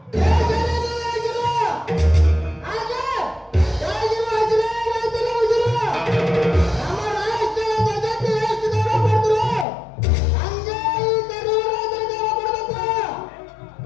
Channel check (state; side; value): drops out; right; at 9.7 s